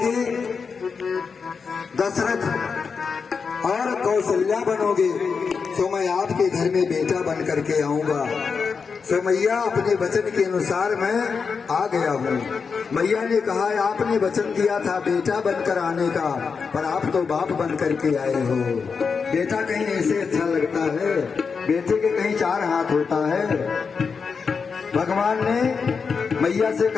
दशरथ और कौशल्या बनोगे, तो मैं आपके घर में बेटा बन करके आऊंगा। तो मैया अपने वचन के अनुसार मैं आ गया हूँ। मैया ने कहा, आपने वचन दिया था बेटा बनकर आने का, पर आप तो बाप बन करके आए हो। बेटा कहीं ऐसे अच्छा लगता है, बेटे के कहीं 4 हाथ होता है। भगवान ने मैया से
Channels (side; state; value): right; quieter; 5.5 dB